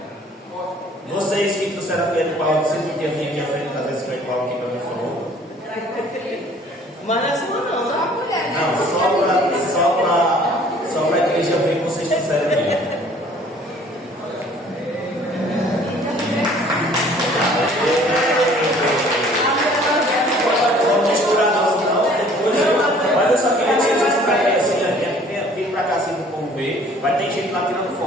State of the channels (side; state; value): both; normal; correlation 0.54